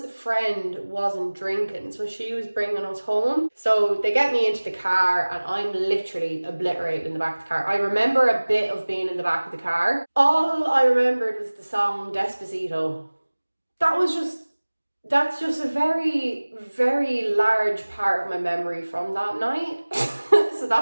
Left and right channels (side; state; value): both; inverted; correlation -1.00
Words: friend wasn't drinking, so she was bringing us home. So they get me into the car and I'm literally obliterated in the back of the car. I remember a bit of being in the back of the car. All I remembered was the song Despacito. That's just a very, very large part of my memory from that night. So